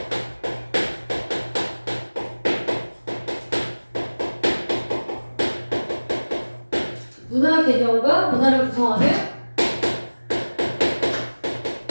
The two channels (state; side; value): inverted; both; correlation -1.00